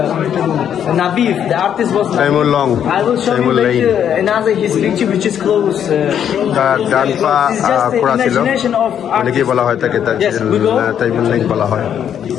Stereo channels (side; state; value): right; quieter; 9.1 dB